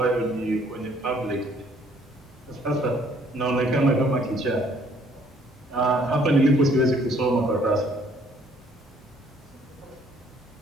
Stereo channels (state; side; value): normal; both; correlation 0.62